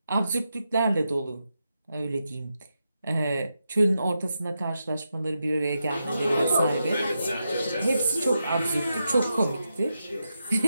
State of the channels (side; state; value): both; inverted; correlation -0.86